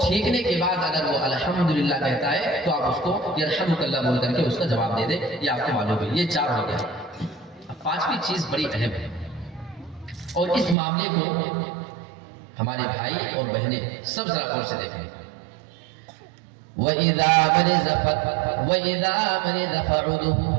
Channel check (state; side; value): drops out; left; at 10.8 s